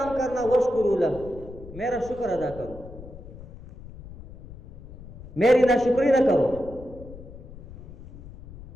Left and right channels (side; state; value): left; noise; rumble, 16 dB below the sound